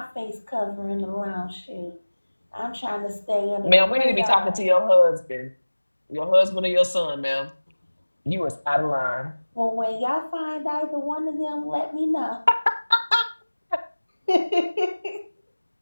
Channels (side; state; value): both; inverted; correlation -1.00